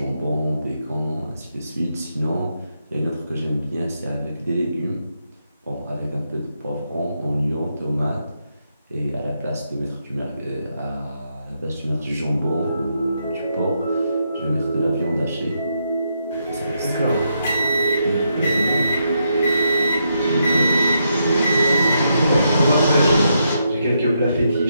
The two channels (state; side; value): inverted; both; correlation -0.80